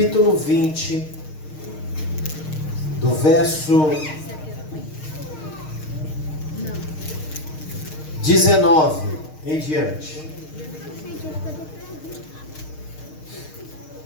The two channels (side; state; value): right; late; 6.5 ms